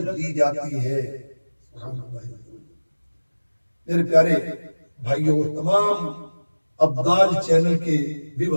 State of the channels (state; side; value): inverted; both; correlation -1.00